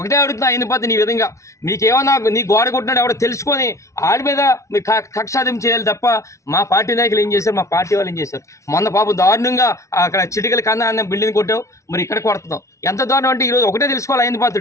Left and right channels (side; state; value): right; late; 0.14 ms